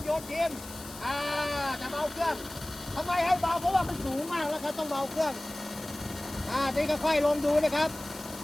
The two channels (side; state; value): left; noise; hiss, 15 dB below the sound